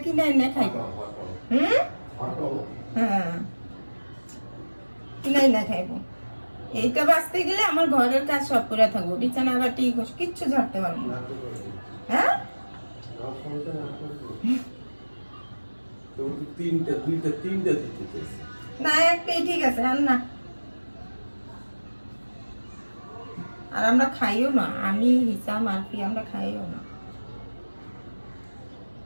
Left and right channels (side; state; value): both; inverted; correlation -1.00